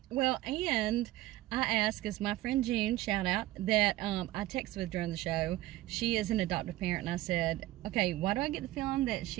Well, and I asked, as my friend June, shout out, that I texted with during the show. She is an adoptive parent, and I said, okay, why do I get the feeling that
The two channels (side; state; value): left; quieter; 16.4 dB